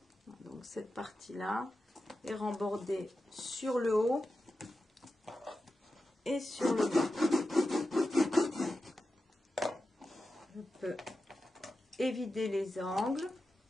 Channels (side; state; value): both; normal; correlation 0.91